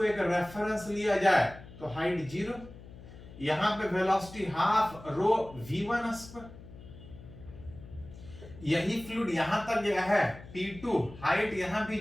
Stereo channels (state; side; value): noise; left; hum, 17 dB below the sound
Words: एक रेफरेंस लिया जाए तो हाइट 0, यहां पे velocity half rho V1 square, यही फ्लूइड यहां तक गया है P2, हाइट यहां भी